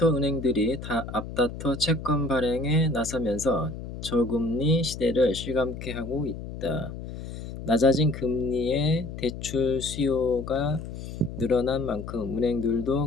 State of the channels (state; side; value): noise; left; hum, 9 dB below the sound